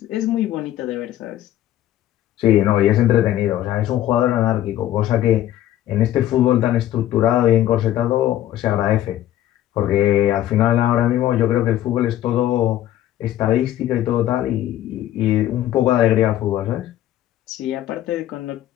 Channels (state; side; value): quieter; right; 12.7 dB